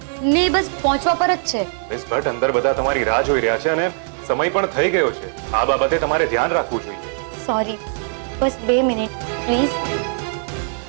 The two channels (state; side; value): silent; left; 64 dB below the other